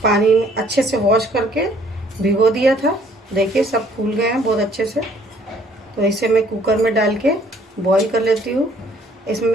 में अच्छे से वॉश करके भिगो दिया था। देखिए सब फूल गए हैं बहुत अच्छे से। तो इसे मैं कुकर में डाल के बॉईल कर लेती हूँ। इसमें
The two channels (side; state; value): both; normal; correlation 0.60